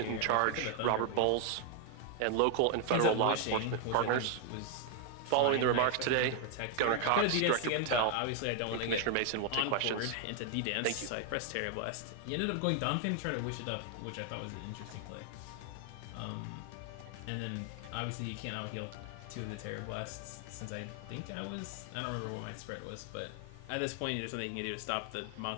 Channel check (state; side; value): different; both; correlation 0.00